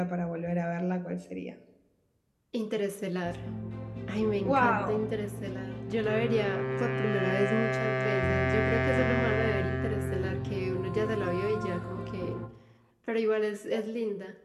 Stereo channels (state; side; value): identical; both; correlation 1.00